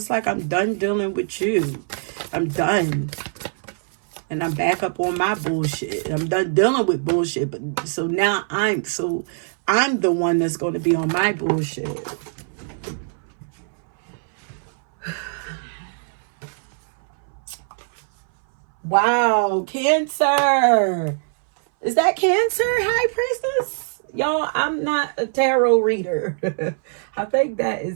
like I'm done dealing with you. I'm done. And I'm back up on my bullshit. I'm done dealing with bullshit. But so now I'm the one that's going to be on my bullshit. Wow, Cancer. Is that Cancer, High Priestess? Y'all, I'm not a tarot reader. I think that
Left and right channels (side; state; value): left; silent; 62 dB below the other